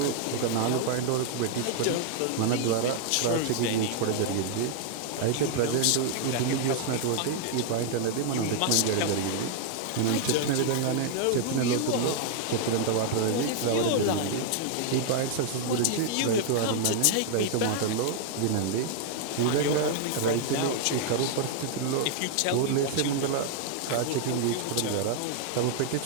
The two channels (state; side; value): different; both; correlation 0.00